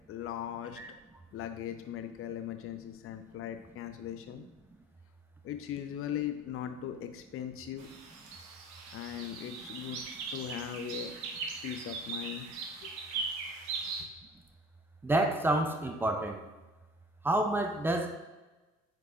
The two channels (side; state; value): both; normal; correlation 0.44